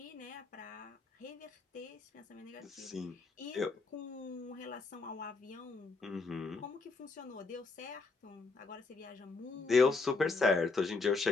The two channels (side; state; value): right; quieter; 4.0 dB